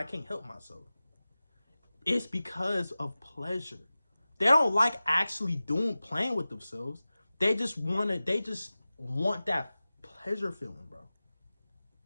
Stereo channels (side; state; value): both; inverted; correlation -0.97